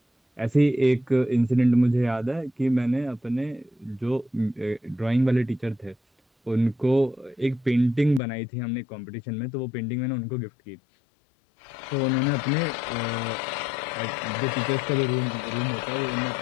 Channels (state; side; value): drops out; right; at 8.2 s